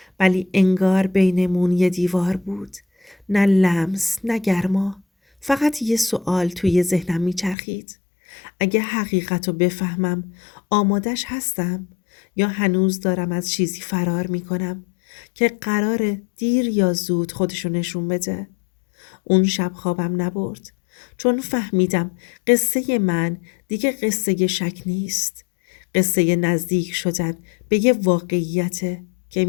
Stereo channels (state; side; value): drops out; right; at 7.6 s